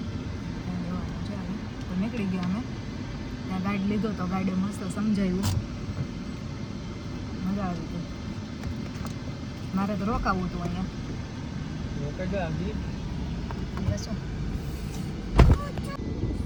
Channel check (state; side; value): identical; both; correlation 1.00